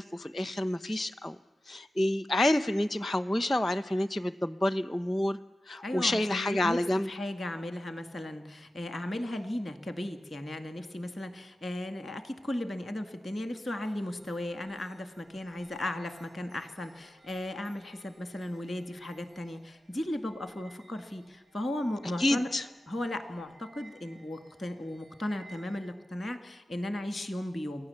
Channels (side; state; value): both; normal; correlation 0.94